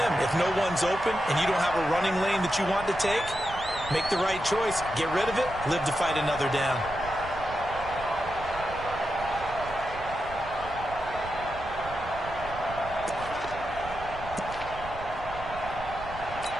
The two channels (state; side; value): noise; right; rumble, 13 dB below the sound